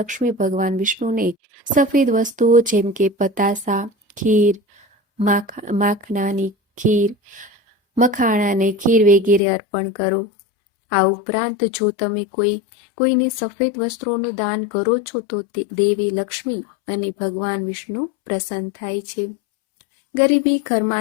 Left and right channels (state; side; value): drops out; right; at 9.4 s